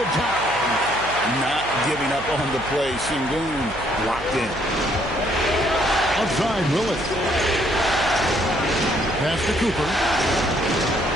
it down. Not giving up on the play. Şengün locked in. Outside Willis. Pass to Cooper.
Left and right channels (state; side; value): noise; right; hum, 15 dB below the sound